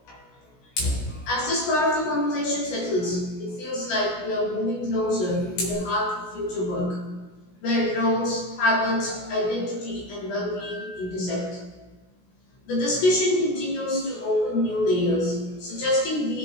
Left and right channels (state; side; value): late; right; 16 ms